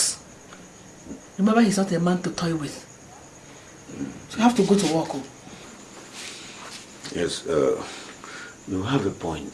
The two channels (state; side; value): identical; both; correlation 1.00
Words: remember, he's not a man to toy with. So you have to go to work. Yes, you have a point